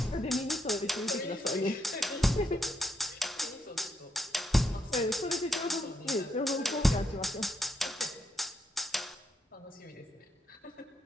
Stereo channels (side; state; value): both; normal; correlation 0.79